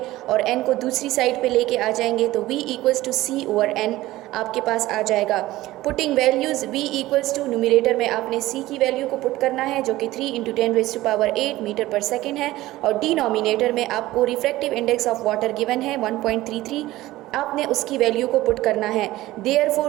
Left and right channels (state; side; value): quieter; left; 16.9 dB